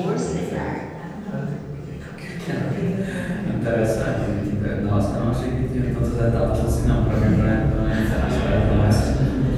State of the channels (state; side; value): identical; both; correlation 1.00